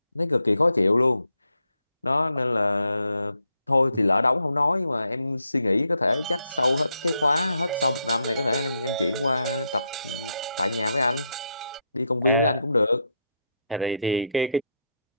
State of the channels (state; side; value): inverted; both; correlation -0.79